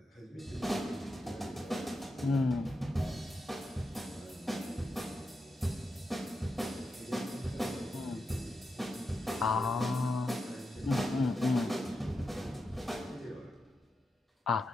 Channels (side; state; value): both; normal; correlation 0.87